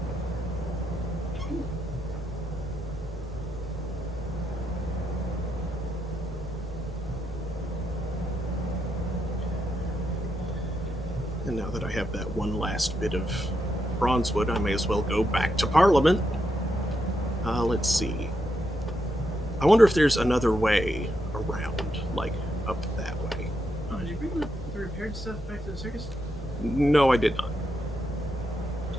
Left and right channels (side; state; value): both; normal; correlation 0.82